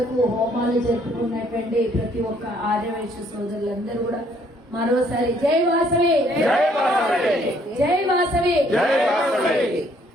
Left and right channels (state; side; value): normal; both; correlation 0.65